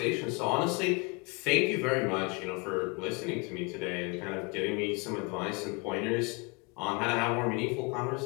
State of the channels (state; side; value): quieter; right; 29.9 dB